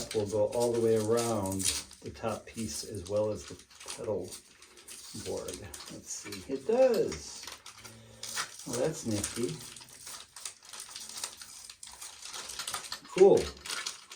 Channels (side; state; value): both; identical; correlation 1.00